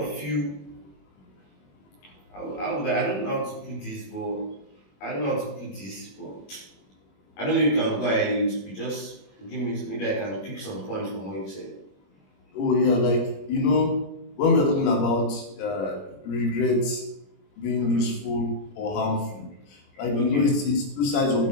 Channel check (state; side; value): late; right; 21 ms